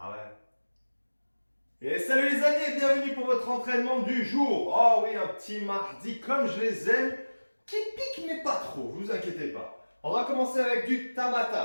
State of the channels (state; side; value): inverted; both; correlation -1.00